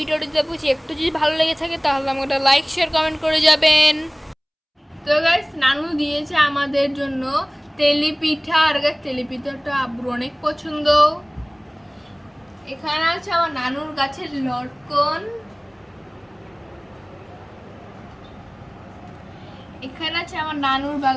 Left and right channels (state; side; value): identical; both; correlation 1.00